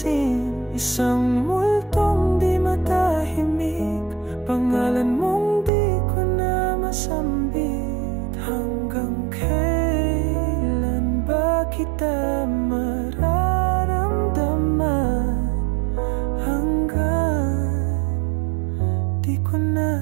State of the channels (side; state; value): left; drops out; at 5.7 s